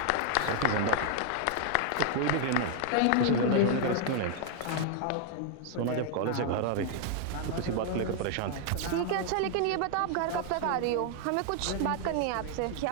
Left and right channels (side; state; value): both; different; correlation 0.00